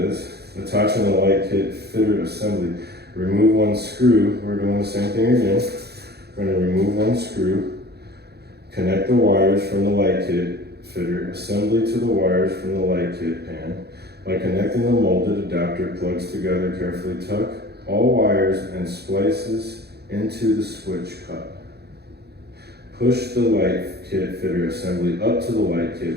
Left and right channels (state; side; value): late; left; 0.47 ms